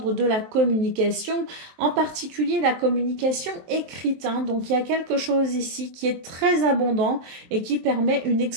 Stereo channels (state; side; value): late; left; 23 ms